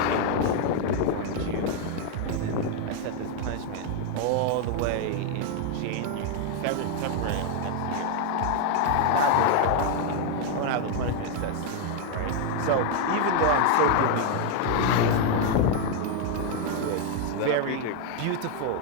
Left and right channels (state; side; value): different; both; correlation 0.01